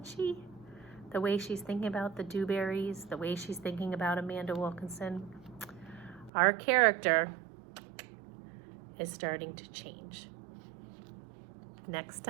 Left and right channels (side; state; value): left; drops out; at 6.3 s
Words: she? The way she's thinking about the Dewberries, the way she's thinking about Amanda Wilkinson. Our character is starting to change. Next